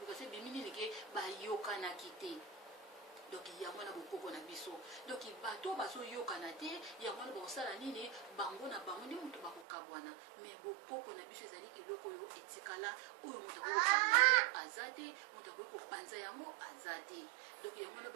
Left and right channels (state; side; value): drops out; left; at 9.7 s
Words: ebimi nini ke bayokanaki te. Donc yango na bokoko na biso, donc bato bazoyokana te, yango na bakosala nini bango na bango ndi moto bakokabwana, mais bokoko na biso ezali eloko oyo etikala oyo moto akokokabwana yango aza te, moto akoki kopanza yango aza te. Donc yango na